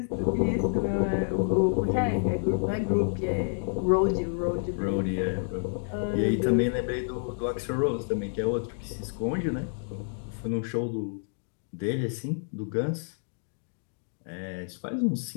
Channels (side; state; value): right; silent; digital silence